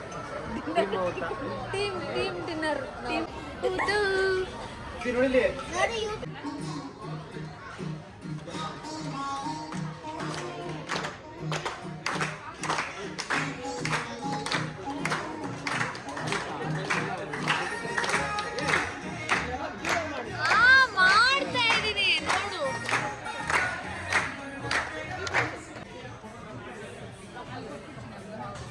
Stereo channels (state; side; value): identical; both; correlation 1.00